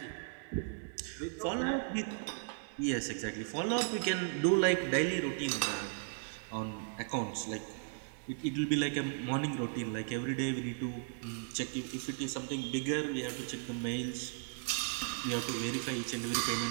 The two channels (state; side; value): silent; left; digital silence